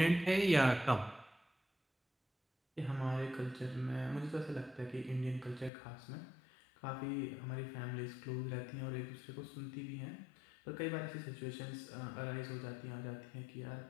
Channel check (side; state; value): right; drops out; at 5.7 s